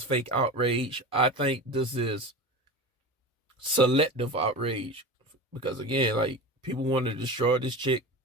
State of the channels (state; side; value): normal; both; correlation 0.29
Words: fake outrage. I think this is selective outrage. Because again, like, people want to destroy this chick